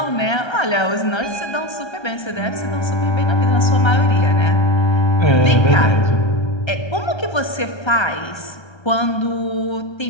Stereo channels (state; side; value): late; right; 1.3 ms